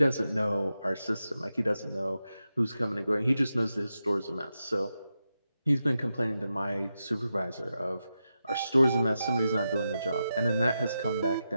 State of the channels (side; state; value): both; inverted; correlation -0.89